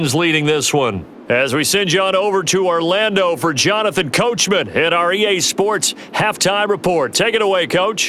leading this one. As we send you on over to Orlando for Jonathan Coachman in our EA Sports Halftime Report. Take it away,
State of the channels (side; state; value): both; identical; correlation 1.00